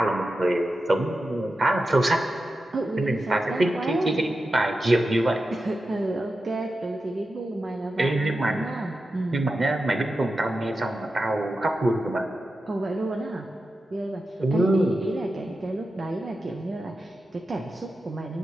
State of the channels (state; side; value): normal; both; correlation 0.91